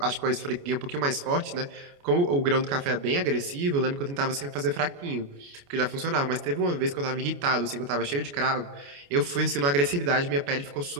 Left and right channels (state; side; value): late; left; 29 ms